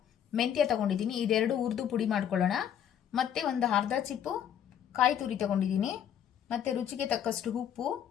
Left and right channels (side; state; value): right; quieter; 9.4 dB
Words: ಮೆಂತ್ಯ ತೊಗೊಂಡಿದ್ದೀನಿ. ಇದೆರಡು ಹುರಿದು ಪುಡಿ ಮಾಡ್ಕೊಳ್ಳೋಣ. ಮತ್ತು ಒಂದು ಅರ್ಧ ಚಿಪ್ಪು ಕಾಯಿ ತುರಿ ತೊಗೊಂಡಿದ್ದೀನಿ. ಮತ್ತು ರುಚಿಗೆ ತಕ್ಕಷ್ಟು ಉಪ್ಪು,